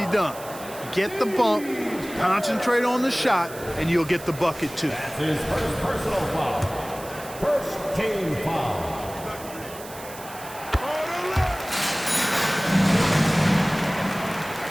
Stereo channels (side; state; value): right; noise; hiss, 16 dB below the sound